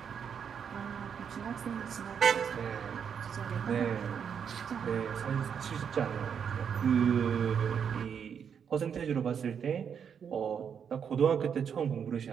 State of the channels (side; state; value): left; quieter; 7.4 dB